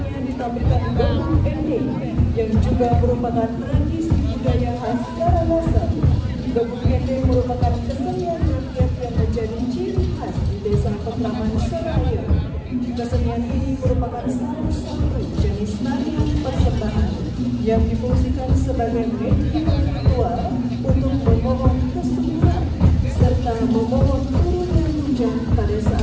ditampilkan Gabung Ending yang juga merupakan tradisi budaya khas Karangasem. Gabung Ending merupakan kesenian rakyat yang menjadi ciri khas di Desa Petraman Seraya. Kesenian ini merupakan salah satu jenis tarian persembahan yang difungsikan sebagai media ritual untuk memohon kesuburan serta memohon turunnya hujan pada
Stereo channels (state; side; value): identical; both; correlation 1.00